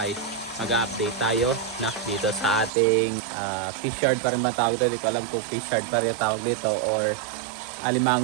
ay mag-update tayo na dito sa ating fishard pa rin ba tawag dito? Hindi ko alam kung fishard pa rin tawag dito or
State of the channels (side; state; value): left; drops out; at 2.7 s